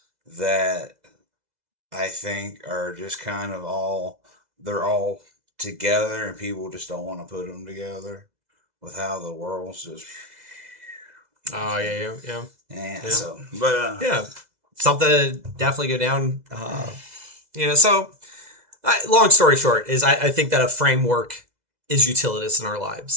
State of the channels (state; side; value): late; left; 2.0 ms